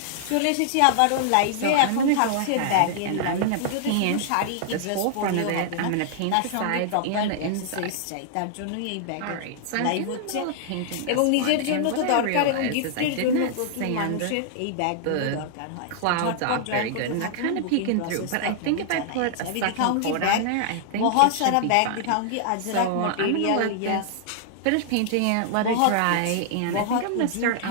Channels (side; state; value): both; different; correlation -0.01